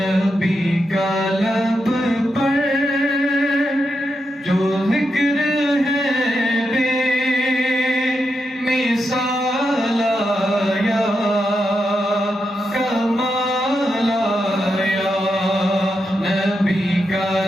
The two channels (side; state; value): both; normal; correlation 0.85